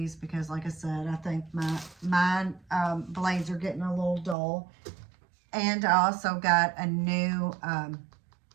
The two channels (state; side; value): drops out; left; at 4.4 s